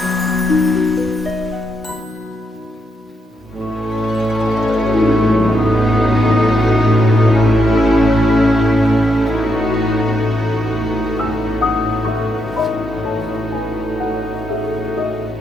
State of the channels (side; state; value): both; normal; correlation 0.80